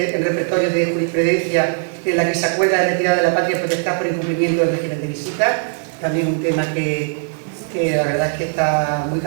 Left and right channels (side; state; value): left; silent; digital silence